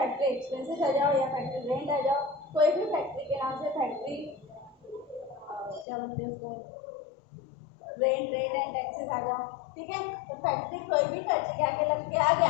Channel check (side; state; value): right; drops out; at 5.9 s